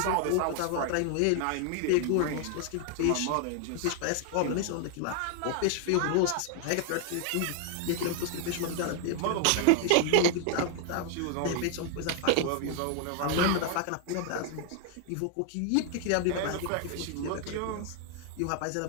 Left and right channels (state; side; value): different; both; correlation 0.00